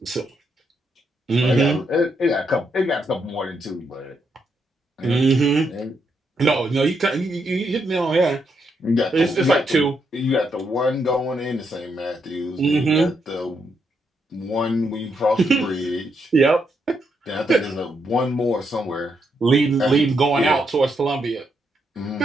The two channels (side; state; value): both; normal; correlation 0.79